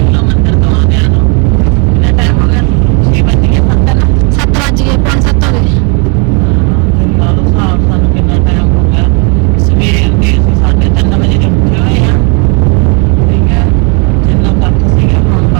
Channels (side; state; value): left; quieter; 33.8 dB